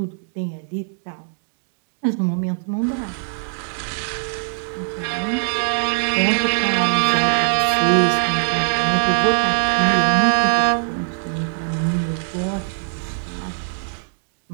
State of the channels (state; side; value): silent; left; digital silence